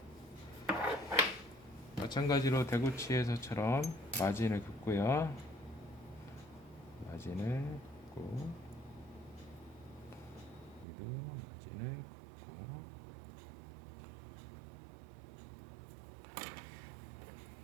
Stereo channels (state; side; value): drops out; left; at 10.9 s